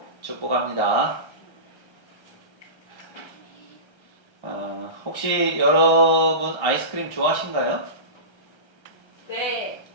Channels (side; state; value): right; late; 1.3 ms